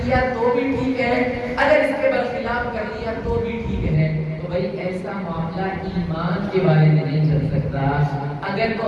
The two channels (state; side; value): identical; both; correlation 1.00